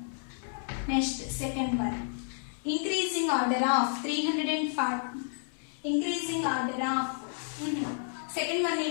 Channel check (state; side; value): silent; right; 57 dB below the other